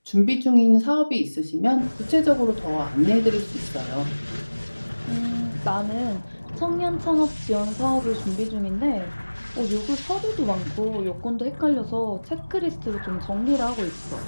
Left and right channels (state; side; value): inverted; both; correlation -1.00